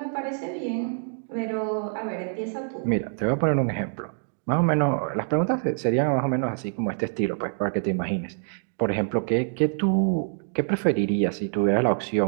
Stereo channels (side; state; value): left; silent; digital silence